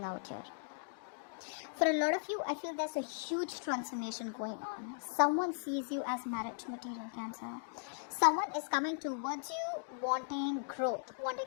out here. For a lot of you, I feel there's a huge transformation going on. Someone sees you as marriage material, Cancer. Someone is coming towards you wanting growth,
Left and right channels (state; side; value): silent; right; digital silence